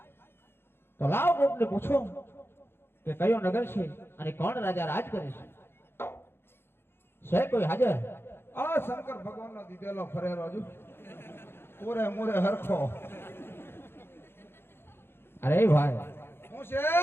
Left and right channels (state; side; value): late; right; 0.11 ms